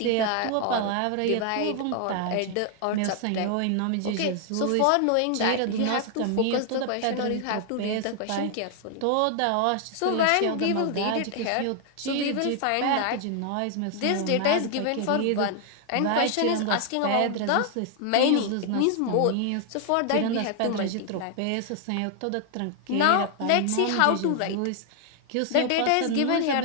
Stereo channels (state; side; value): different; both; correlation 0.00